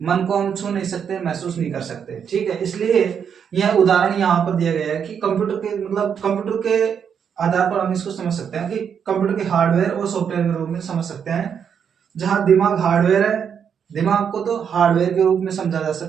को हम छू नहीं सकते, महसूस नहीं कर सकते, ठीक है। इसलिए यह उदाहरण यहाँ पर दिया गया है कि कंप्यूटर के आधार पर हम इसको समझ सकते हैं कि कंप्यूटर के हार्डवेयर और सॉफ्टवेयर के रूप में समझ सकते हैं। जहां दिमाग हार्डवेयर है, दिमाग को तो हार्डवेयर के रूप में समझा जा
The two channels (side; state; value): left; quieter; 7.5 dB